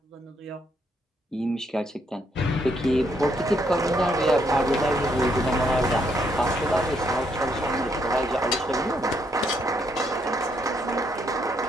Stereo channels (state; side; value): normal; both; correlation 0.73